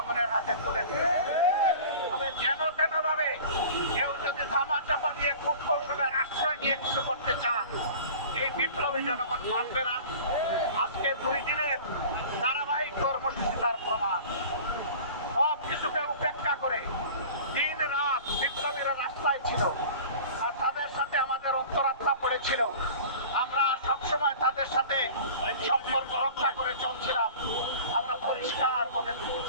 হাতে তুলে দিতে। তবে যেন তেন ভাবে কেউ যদি ধামাচাপা দিয়ে কূটকৌশলের আশ্রয় নিয়ে কিছু করতে চান, এই বিপ্লবী জনগণ মানবে না। আজকে 2 দিনের ধারাবাহিক কর্মসূচি তার প্রমাণ। সব কিছুকে উপেক্ষা করে দিন রাত বিপ্লবীরা রাস্তায় ছিল আর তাদের সাথে আমাদের অন্তরাত্মা পড়েছিল। আমরা সবসময় তাদের সাথে সম্পর্ক রক্ষা করে চলছিলাম। আমরা পরিষ্কার বলে দিতে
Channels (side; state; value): both; inverted; correlation -0.40